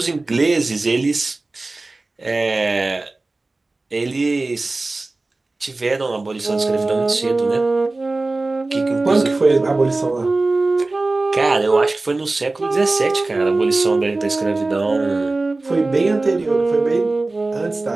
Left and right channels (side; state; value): left; quieter; 3.2 dB